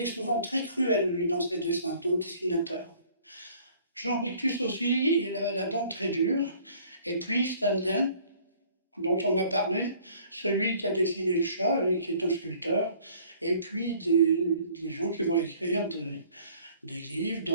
souvent très cruel, lui, dans ses dessins, ton dessinateur. Jean Rictus aussi, il a la dent très dure. Et puis Stanley, dont on a parlé, celui qui a dessiné le chat et qui est un sculpteur. Et puis des gens qui vont écrire des livres,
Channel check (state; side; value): inverted; both; correlation -0.55